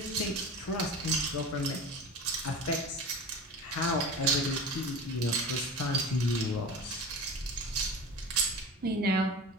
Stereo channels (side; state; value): both; normal; correlation 0.32